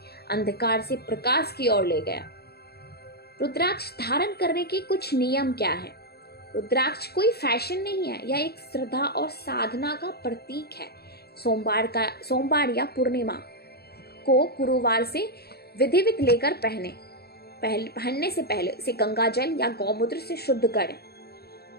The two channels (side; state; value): right; late; 0.46 ms